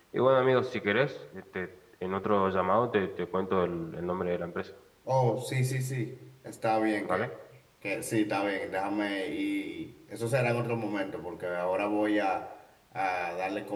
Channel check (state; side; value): identical; both; correlation 1.00